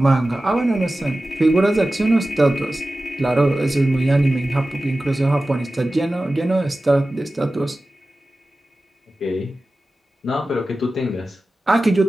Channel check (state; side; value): normal; both; correlation 0.95